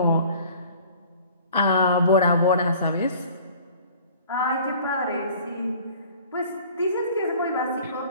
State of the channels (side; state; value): both; inverted; correlation -0.49